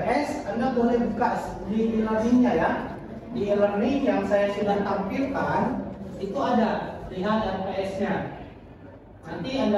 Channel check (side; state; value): both; identical; correlation 1.00